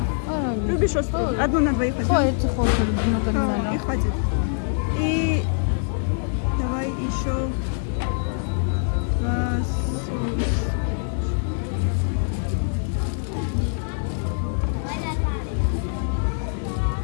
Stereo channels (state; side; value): silent; right; 58 dB below the other